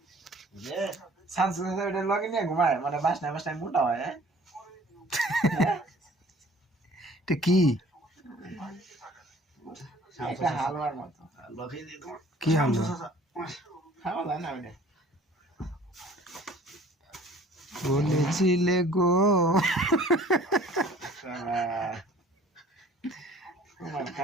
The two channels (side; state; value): both; normal; correlation 0.52